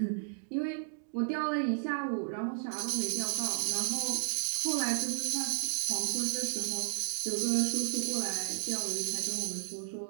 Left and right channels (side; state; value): left; silent; digital silence